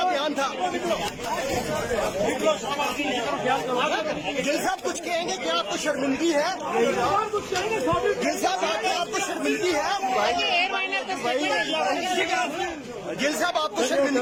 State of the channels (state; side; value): identical; both; correlation 1.00